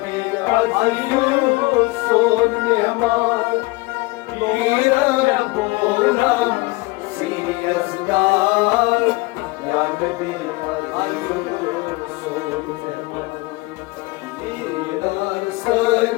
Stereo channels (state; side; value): quieter; right; 23.3 dB